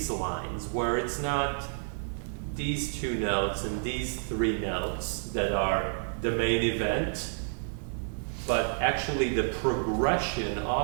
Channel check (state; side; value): silent; left; 58 dB below the other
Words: lines, where it's not these two notes and these three notes that are the main event, but actually the progression